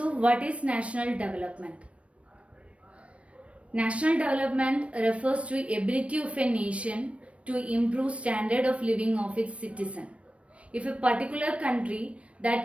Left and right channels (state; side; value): late; left; 0.062 ms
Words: what is national development? National development refers to ability of a nation to improve standard of living of its citizen. If a particular country